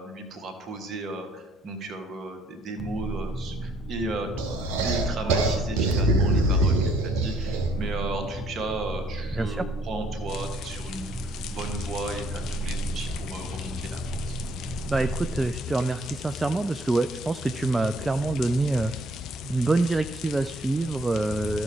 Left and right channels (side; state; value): both; normal; correlation 0.66